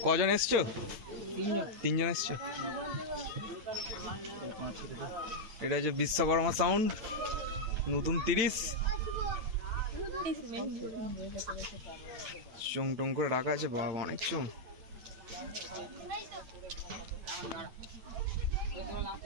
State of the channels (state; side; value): late; left; 8.9 ms